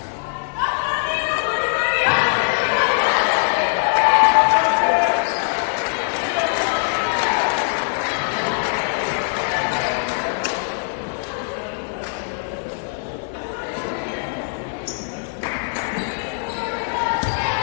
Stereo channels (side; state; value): right; silent; 55 dB below the other